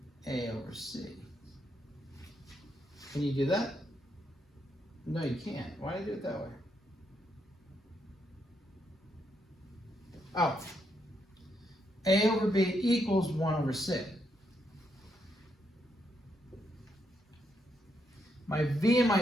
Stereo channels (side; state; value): both; normal; correlation 0.78